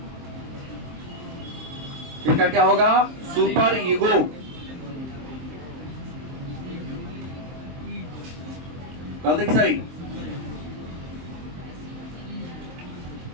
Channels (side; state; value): left; late; 23 ms